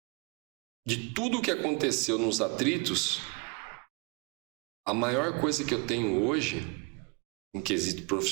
de tudo que aconteceu nos atritos, a maior coisa que eu tenho hoje, em quesito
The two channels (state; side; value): quieter; left; 29.4 dB